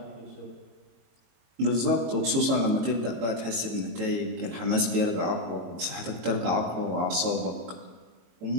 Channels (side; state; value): left; late; 22 ms